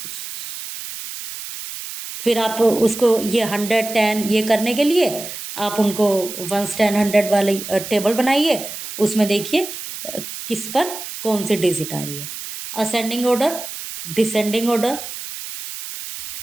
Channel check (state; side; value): noise; right; hiss, 9 dB below the sound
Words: फिर आप उसको ये 100 10 ये करने के लिए आप उनको 1 10 100 वाली टेबल बनाइए, उसमें देखिए किस पर कौन सी डिजिट आ रही है। Ascending order, descending order,